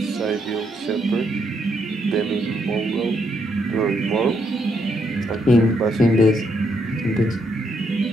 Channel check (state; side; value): normal; both; correlation 0.76